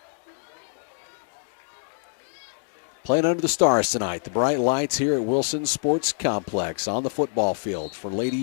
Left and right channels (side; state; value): right; silent; digital silence